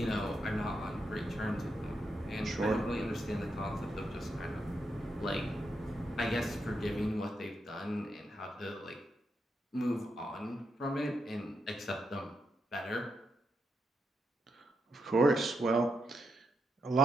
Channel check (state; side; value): normal; both; correlation 0.83